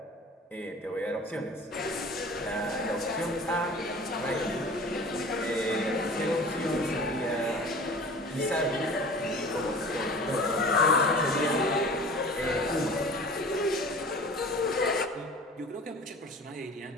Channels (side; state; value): both; normal; correlation 0.42